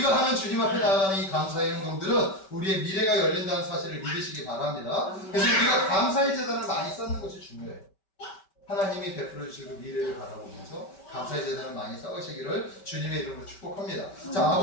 하는 주님 앞에 나아가는 이 감사의 행동들은 우리의 미래가 열린다는 사실을 믿으시기 바랍니다. 그래서 우리가 감사의 재단을 많이 쌓는 것이 중요해요. 하나님이 베풀어 주시고 미래를 바라보면서 감사의 재단을 많이 쌓으시기를 주님의 이름으로 축복합니다. 자,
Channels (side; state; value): right; late; 5.2 ms